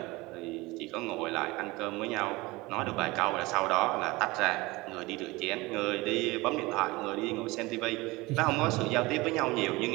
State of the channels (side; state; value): left; quieter; 22.1 dB